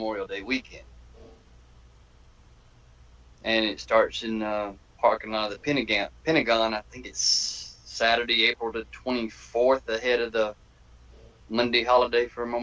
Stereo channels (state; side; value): identical; both; correlation 1.00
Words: Day weekend. And it starts in parking lot of the Pentagon. I think it's Saturday, April the 24th, ahead of the Monday holiday for